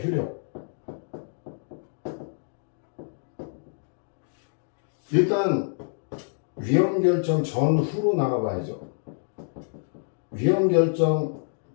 효력. 일단 위헌 결정 전후로 나가봐야죠. 위헌 결정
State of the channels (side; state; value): right; silent; digital silence